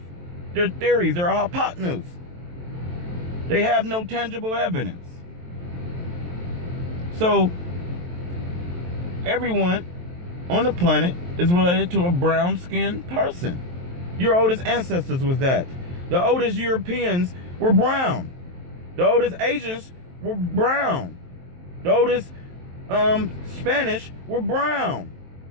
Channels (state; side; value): late; left; 23 ms